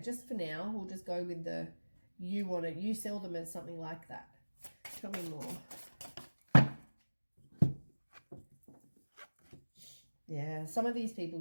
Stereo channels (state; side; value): inverted; both; correlation -1.00